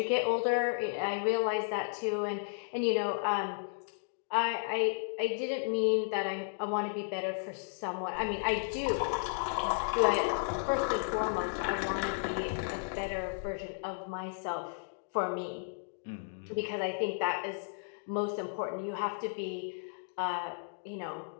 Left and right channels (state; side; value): silent; right; digital silence